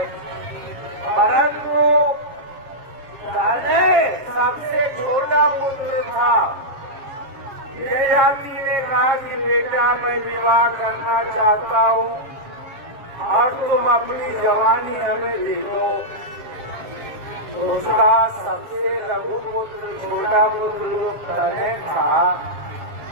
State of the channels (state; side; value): late; left; 7.4 ms